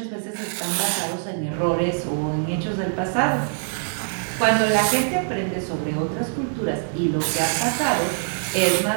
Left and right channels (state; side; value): silent; left; digital silence